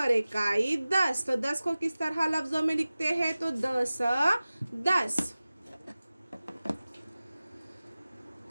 इकाई 10। तो 10 को किस तरह लफ्ज़ों में लिखते हैं, तो 10 10।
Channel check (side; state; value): both; inverted; correlation -0.97